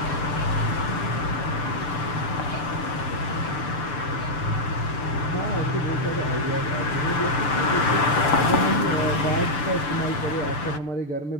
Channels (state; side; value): late; right; 6.8 ms